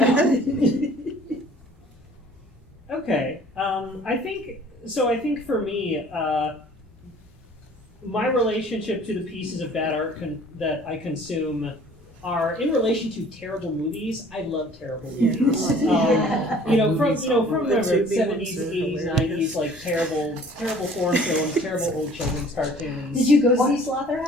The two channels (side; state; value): both; normal; correlation 0.52